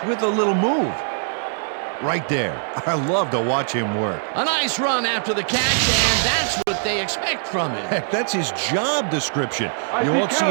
with a little move. Right there. I love to watch him work. A nice run after the catch, and that's what they expect from him. Heck, that's his job description. You won't see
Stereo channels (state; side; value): silent; left; digital silence